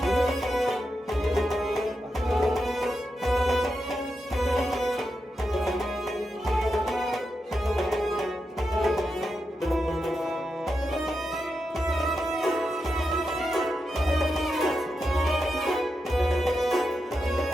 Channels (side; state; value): both; normal; correlation 0.87